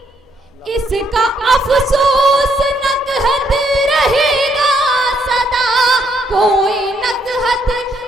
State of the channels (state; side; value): normal; both; correlation 0.72